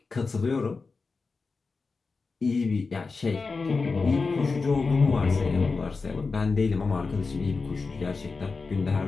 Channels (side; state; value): right; quieter; 4.3 dB